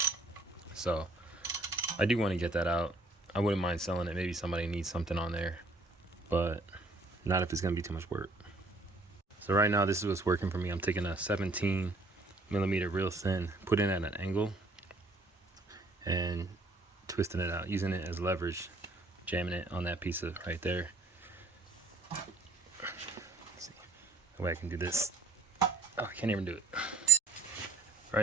So I do want to get that out. I wouldn't mind selling it. Maybe somebody needs something on there, but not if it's going to be too much work. So right now, this is what's working for me. I'm taking a 17mm real thin, putting it at an angle, and twisting it out, using it as leverage, jamming it on that piece of right there. Let's see. That way I can do this. Oh, I can't even do it.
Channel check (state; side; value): quieter; left; 3.2 dB